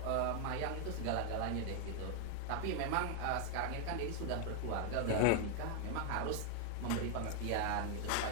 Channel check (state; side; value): different; both; correlation 0.00